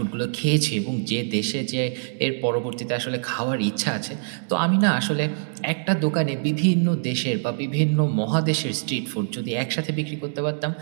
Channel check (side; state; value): left; silent; digital silence